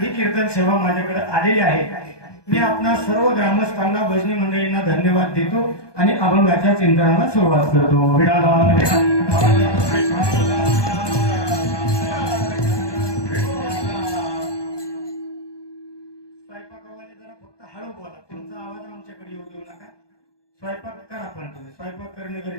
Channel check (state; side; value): late; right; 1.2 ms